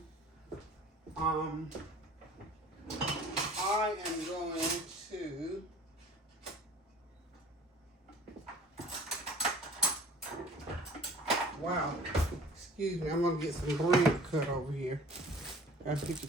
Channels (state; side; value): normal; both; correlation 0.47